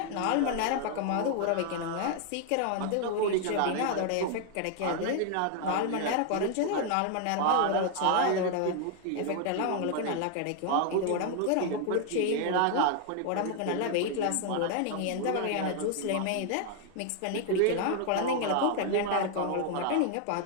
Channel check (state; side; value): different; both; correlation 0.00